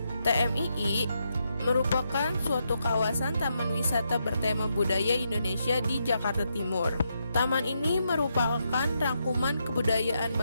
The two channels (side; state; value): both; inverted; correlation -0.81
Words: TMII merupakan suatu kawasan taman wisata bertema budaya Indonesia di Jakarta Timur. Taman ini merupakan rangkuman kebudayaan